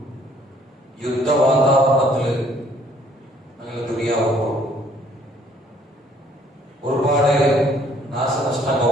യുദ്ധ വാതാവരണത്തില് ഞങ്ങൾ ദുനിയാവുമ്പോൾ ഒരുപാട്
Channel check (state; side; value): normal; both; correlation 0.61